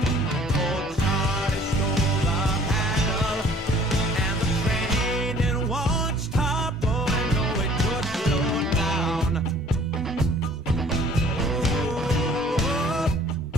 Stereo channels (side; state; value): both; normal; correlation 0.53